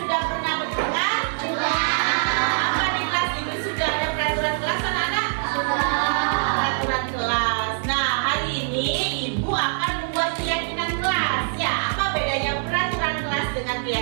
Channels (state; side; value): silent; left; 59 dB below the other